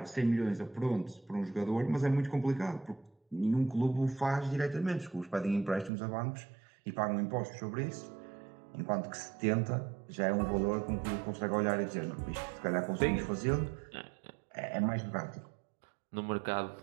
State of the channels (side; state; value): left; drops out; at 5.9 s